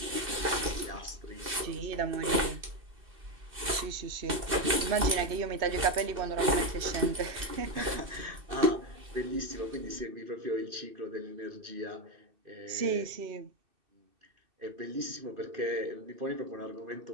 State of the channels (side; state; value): left; late; 2.6 ms